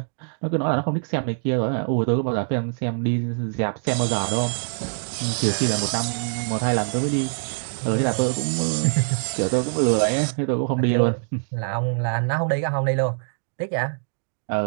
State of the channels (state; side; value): silent; left; digital silence